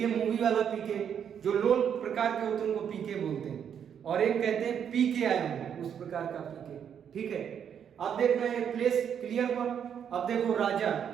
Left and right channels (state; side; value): quieter; left; 8.3 dB